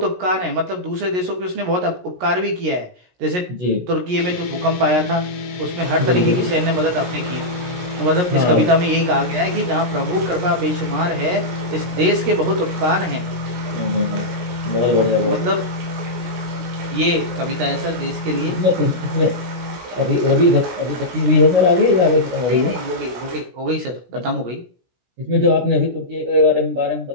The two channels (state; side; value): late; left; 17 ms